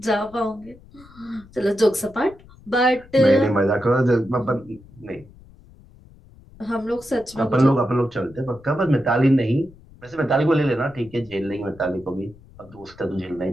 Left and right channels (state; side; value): noise; left; rumble, 23 dB below the sound